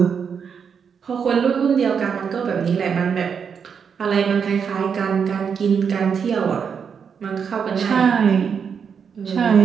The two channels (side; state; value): left; quieter; 6.7 dB